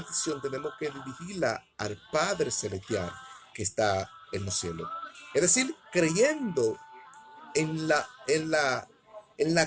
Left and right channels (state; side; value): identical; both; correlation 1.00